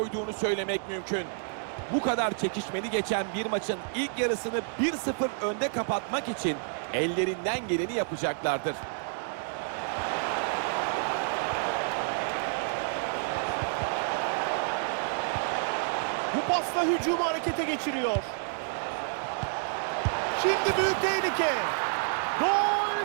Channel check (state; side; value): silent; left; digital silence